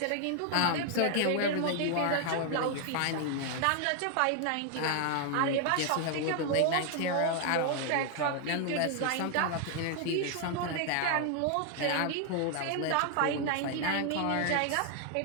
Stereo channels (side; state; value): both; different; correlation 0.00